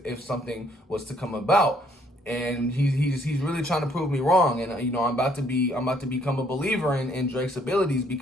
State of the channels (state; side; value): normal; both; correlation 0.65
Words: something was to come about. And he's really trying to prove me wrong. And I'm about to become a believer in Drake's abilities